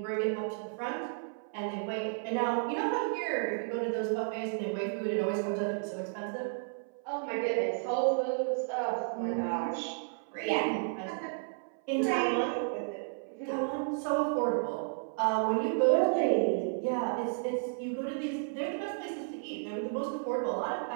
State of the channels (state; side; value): silent; left; 56 dB below the other